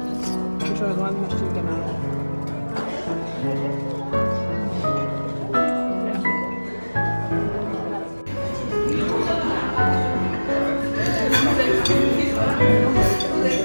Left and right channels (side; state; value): both; inverted; correlation -1.00